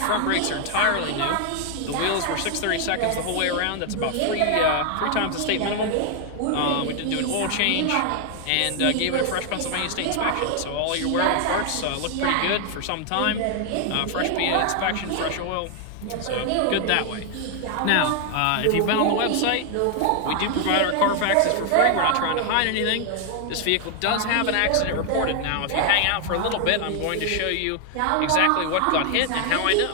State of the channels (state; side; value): different; both; correlation 0.00